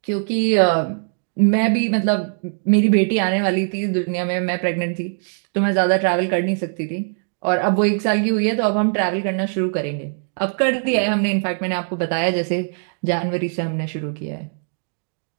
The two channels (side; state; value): left; silent; digital silence